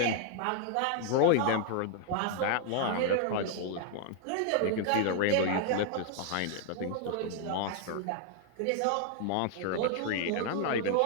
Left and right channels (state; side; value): different; both; correlation 0.00